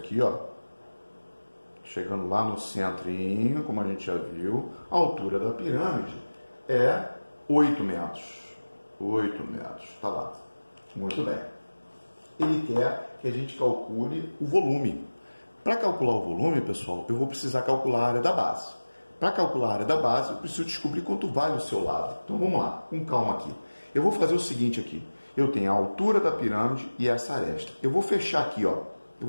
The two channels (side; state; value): both; inverted; correlation -1.00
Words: ó. Chegando lá no centrinho, como a gente já viu, a altura da pirâmide é 8 metros. 8 metros, tá lá. Muito bem. Ele quer que a gente calcule o volume. Para calcular o volume, pessoal, eu vou precisar calcular a área da base. Para calcular a área da base, eu preciso descobrir quanto vale o seu lado. Então vamos lá, com calma aqui. Eu vou fazer o seguinte aqui. Eu tenho a altura da pirâmide e essa aresta. Eu vou fechar aqui, ó.